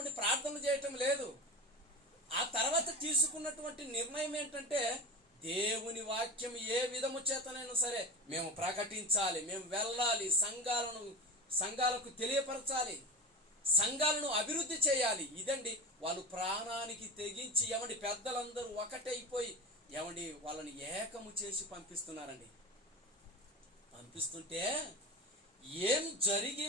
ప్రార్థనలు చేయటం లేదు. ఆ తర్వాత తీసుకున్నటువంటి నిర్ణయం ఏంటంటే దేవుని వాక్యం ఏ విధము చేతనైనా సరే మేము ప్రకటించాలి, మేము వెళ్ళాలి, సంఘాలకు తెలియపరచాలి, సంఘాలను అభివృద్ధి చేయాలి. ఇదండి వాళ్ళు ప్రాణానికి తెగించి ఏమండి పెద్దలందరూ ఒకటైపోయి ఏమండి వాళ్ళని ఏకము చేసి పంపిస్తున్నారండి. పంపిస్తుంటే ఏం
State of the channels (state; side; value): normal; both; correlation 0.26